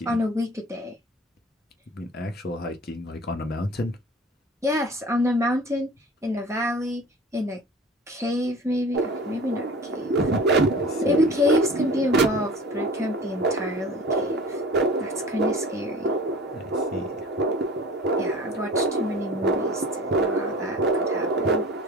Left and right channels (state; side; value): normal; both; correlation 0.41